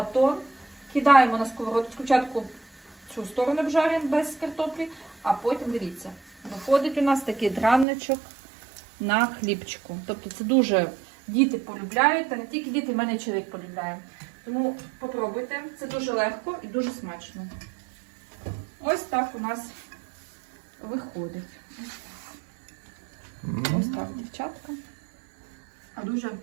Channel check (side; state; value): left; drops out; at 7.9 s